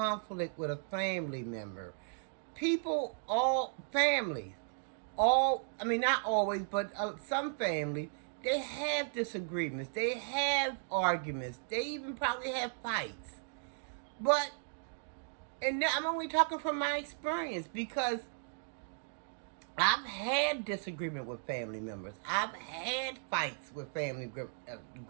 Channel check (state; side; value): silent; left; digital silence